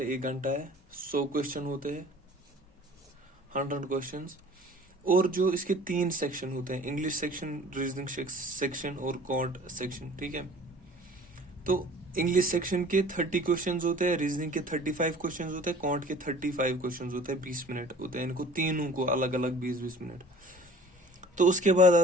1 घंटा है, 100 क्वेश्चन होते हैं, 100 क्वेश्चंस। और जो इसके 3 सेक्शन होते हैं, इंग्लिश सेक्शन, रीजनिंग सेक्शन और कॉन्ट सेक्शन, ठीक है। तो इंग्लिश सेक्शन के 30 क्वेश्चंस होते हैं, रीजनिंग के 35 क्वेश्चंस होते हैं, कॉन्ट के 35 क्वेश्चंस होते हैं, 20 मिनट होते हैं इनको तीनों को अलग अलग 20-20 मिनट। तो उसके बाद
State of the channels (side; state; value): both; normal; correlation 0.47